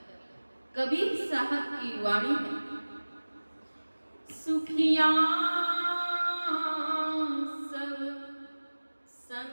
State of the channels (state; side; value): inverted; both; correlation -1.00